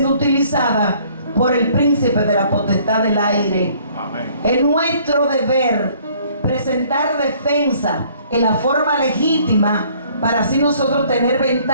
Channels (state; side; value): inverted; both; correlation -0.59